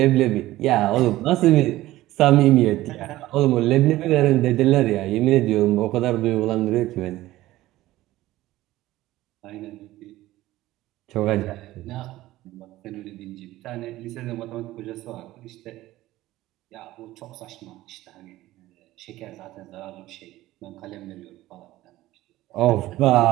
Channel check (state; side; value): quieter; left; 16.3 dB